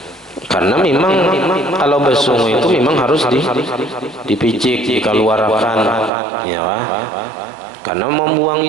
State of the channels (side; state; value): left; drops out; at 6.1 s